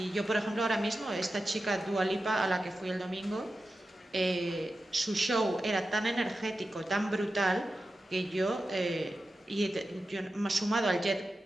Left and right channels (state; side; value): normal; both; correlation 0.92